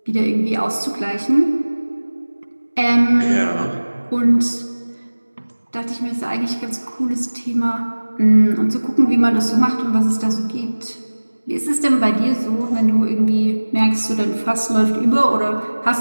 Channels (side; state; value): both; inverted; correlation -1.00